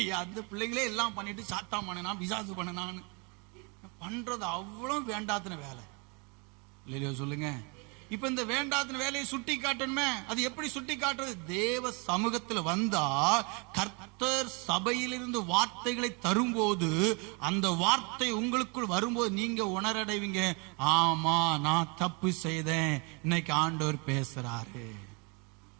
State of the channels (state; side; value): quieter; left; 32.1 dB